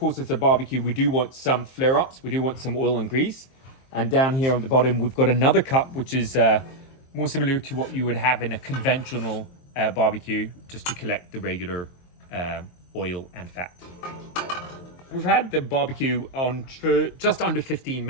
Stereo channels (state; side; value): late; right; 23 ms